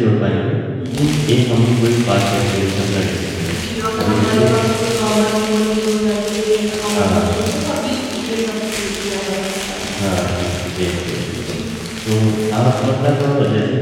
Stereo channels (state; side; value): identical; both; correlation 1.00